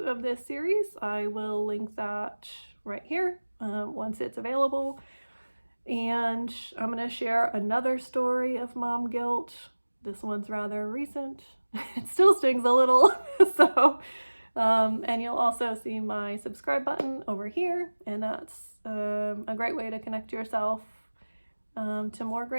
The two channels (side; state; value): both; inverted; correlation -1.00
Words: of this series. I will link that right here once it's available. And I'm going to share another story of mom guilt. This one's rather recent. It still stings a little. So, and you'll also see my subscribe button over here. And that's a great way to connect yourself to more